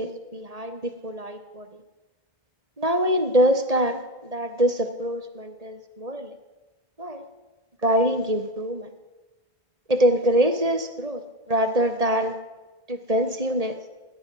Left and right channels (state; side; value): late; left; 1.8 ms